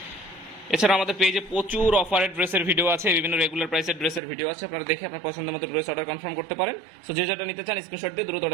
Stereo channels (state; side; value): drops out; left; at 4.2 s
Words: এছাড়া আমাদের পেজে প্রচুর অফারের ড্রেসের ভিডিও আছে, বিভিন্ন রেগুলার প্রাইসের ড্রেসের ভিডিও আছে। আপনারা দেখে আপনার পছন্দ মতো ড্রেস অর্ডার কনফার্ম করতে পারেন। সো যে যেটা নিতে চান স্ক্রিনশট দিয়ে দ্রুত